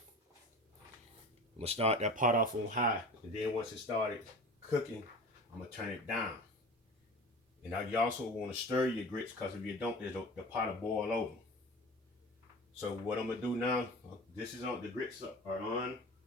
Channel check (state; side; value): normal; both; correlation 0.36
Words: I'm going to start that pot off on high. And then once it started cooking, I'm going to turn it down. And now you also want to stir your grits because if you don't, the pot will boil over. So what I'm gonna do now, this is on, the grits are on.